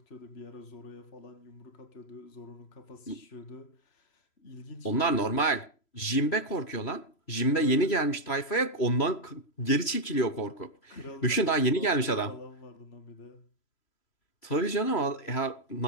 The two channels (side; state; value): right; late; 3.0 ms